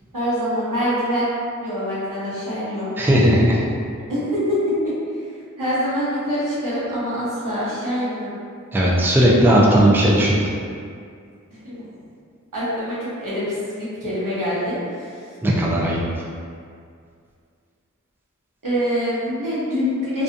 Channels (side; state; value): both; normal; correlation 0.50